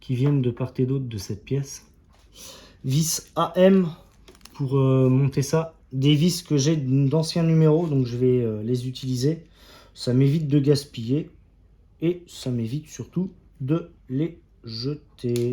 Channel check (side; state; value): both; identical; correlation 1.00